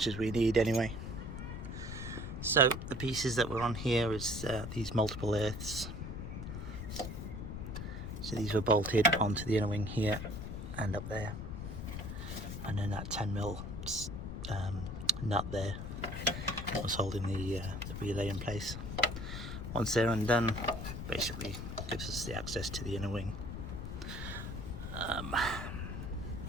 as we need anyway. So the pieces that were on here is these multiple earths. So these were bolted onto the inner wing here and up there, and then that 10mm nut there was holding the relay in place. Once they're undone, basically gives us the access to the inner wing.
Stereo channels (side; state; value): left; noise; rumble, 6 dB below the sound